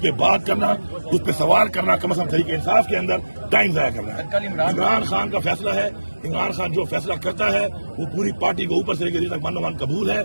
बात करना, उस पर सवाल करना, कम से कम तरीके इंसाफ के अंदर टाइम जाया करना है। इमरान खान का फैसला है, इमरान खान जो फैसला करता है वो पूरी पार्टी को ऊपर से लेकर नीचे तक मन कबूल है।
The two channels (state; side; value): inverted; both; correlation -1.00